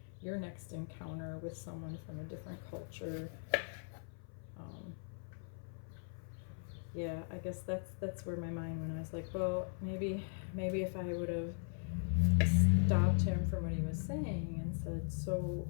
your next encounter with someone from a different culture? Yeah, I guess that's where my mind went. I was like, well, maybe if I would have stopped him from what he was saying and said, so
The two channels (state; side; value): silent; right; 52 dB below the other